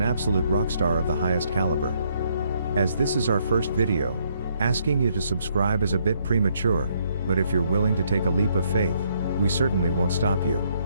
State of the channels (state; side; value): inverted; both; correlation -0.71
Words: absolute rock star of the highest caliber. As this is our first video, asking you to subscribe is a bit premature, but if you're willing to take a leap of faith, we certainly won't stop you.